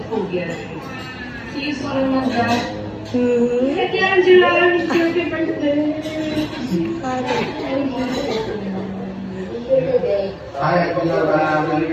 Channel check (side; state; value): both; identical; correlation 1.00